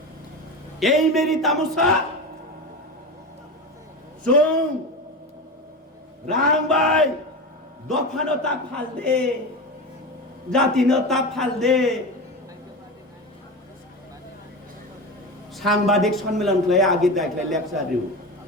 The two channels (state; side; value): normal; both; correlation 0.24